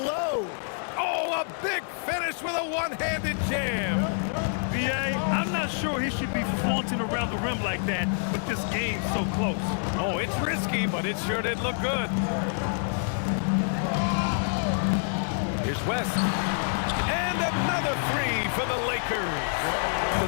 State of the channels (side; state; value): right; silent; digital silence